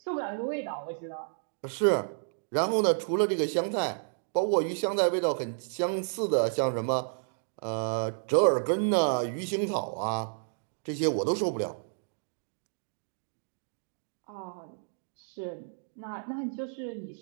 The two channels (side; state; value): left; silent; digital silence